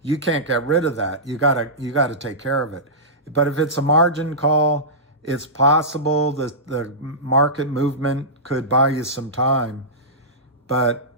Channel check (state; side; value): normal; both; correlation -0.16